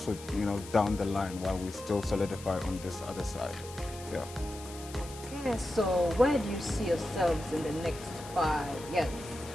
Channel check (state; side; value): noise; left; hiss, 16 dB below the sound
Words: down the line while we still solidify on this other side. Yeah. Okay, so where do you see yourselves in the next 5 years?